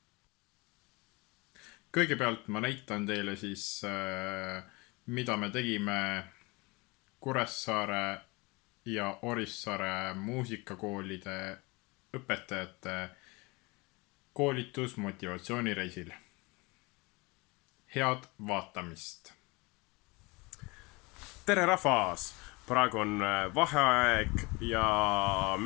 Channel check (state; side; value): quieter; right; 25.5 dB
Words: Kõigepealt ma näitan teile siis, mida me tegime Kuressaare ja Orissaare muusikakoolide õpetajate koolitusmotivatsioonireisil. Head vaatamist! Tere rahvas! Praegu on vaheaeg ja